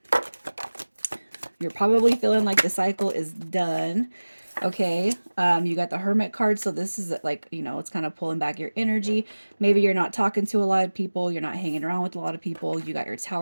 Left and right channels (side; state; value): both; inverted; correlation -1.00